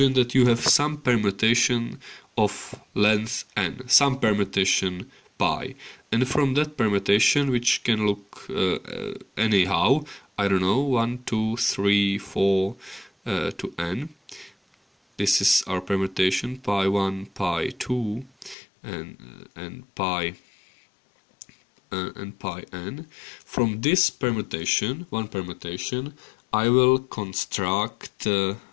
that you have some permutation of length n, some permutation pi, and from that permutation, which can look anyhow, I don't know, 1, 2, 3, 4 to n. This is our permutation pi 1, pi 2, and pi n. From this permutation, one permutation, I will construct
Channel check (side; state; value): right; drops out; at 18.6 s